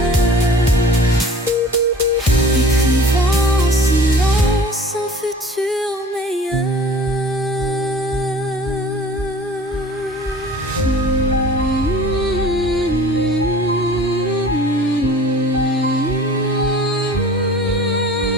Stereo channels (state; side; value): normal; both; correlation 0.45